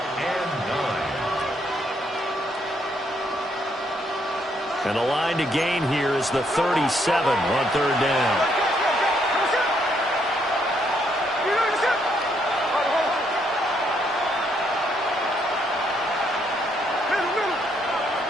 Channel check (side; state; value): both; normal; correlation 0.73